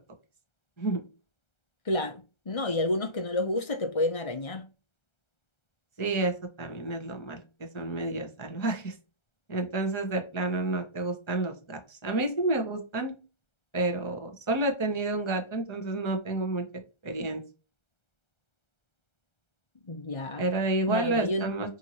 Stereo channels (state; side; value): late; right; 1.3 ms